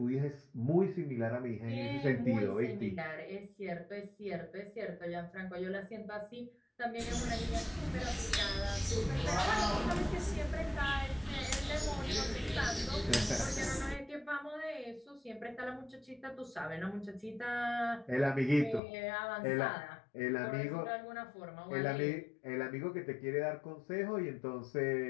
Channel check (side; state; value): right; drops out; at 18.8 s